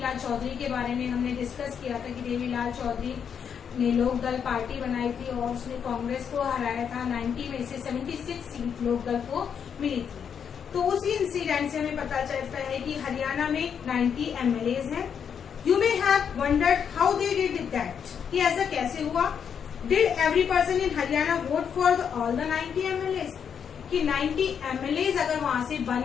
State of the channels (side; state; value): right; quieter; 7.5 dB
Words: चौधरी के बारे में हमने डिस्कस किया था कि देवीलाल चौधरी ने लोक दल पार्टी बनाई थी और उसने कांग्रेस को हराया था। 90 में से 76 सीट लोक दल को मिली थी। तो उसी इंसिडेंट से हमें पता चलता है कि हरियाणा में 90 MLAs हैं। You may have wondered how they did that, कि ऐसा कैसे हुआ। Did every person in Haryana vote for all the 90 MLAs, कि 90 MLAs अगर वहां से